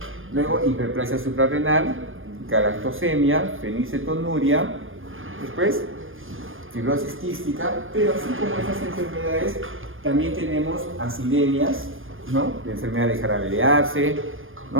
Luego hiperplasia suprarrenal, galactosemia, fenilcetonuria, después fibrosis quística, pero así como esas enfermedades, también tenemos acidemias, ¿no? La enfermedad de jarabelearse,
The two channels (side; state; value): left; late; 0.59 ms